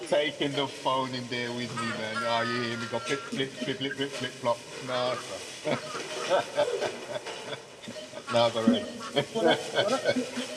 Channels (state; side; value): identical; both; correlation 1.00